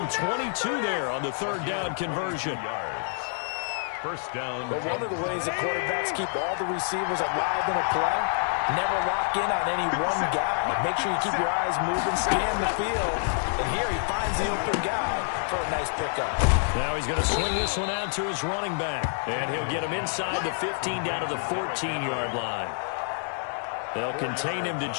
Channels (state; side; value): silent; right; 60 dB below the other